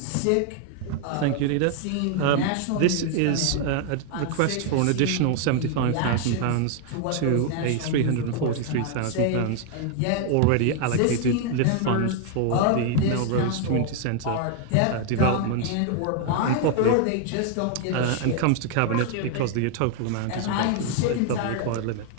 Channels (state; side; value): different; both; correlation 0.00